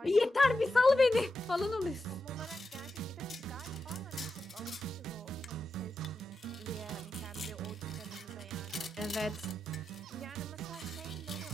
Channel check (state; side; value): normal; both; correlation 0.88